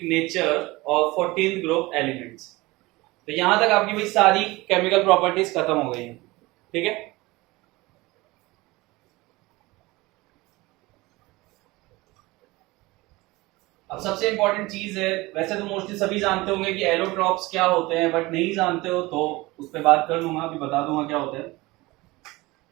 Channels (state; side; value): quieter; left; 21.3 dB